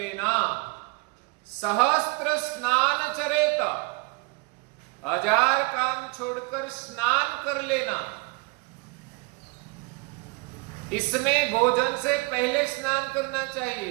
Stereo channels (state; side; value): quieter; left; 27.9 dB